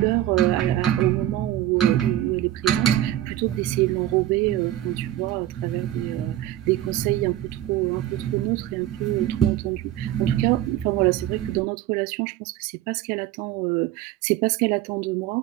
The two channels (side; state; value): left; quieter; 13.3 dB